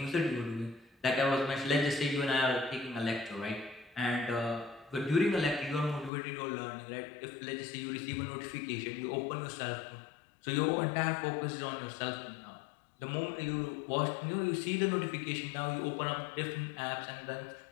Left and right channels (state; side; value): drops out; right; at 6.1 s